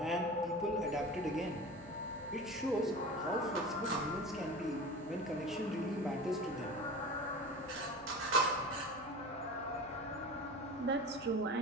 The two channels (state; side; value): noise; right; hum, 22 dB below the sound